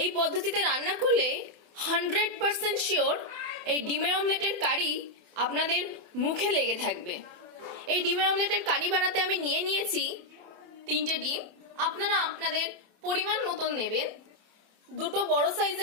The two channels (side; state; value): left; late; 28 ms